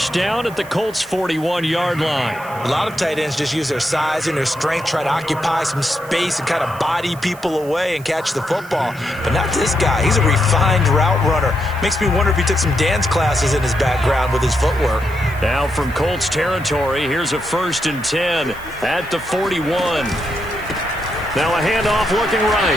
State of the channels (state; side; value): noise; right; hiss, 21 dB below the sound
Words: down at the Colts' 41-yard line. A lot of tight ends just use their size and their strength, try to occupy some space and kind of body people away and catch the football. But not this guy. He's a refined route runner. Makes me wonder if he took some dance classes in his background with his footwork. Now from Colts territory, here's a 1st and 10 at the 41. Now a handoff looking right.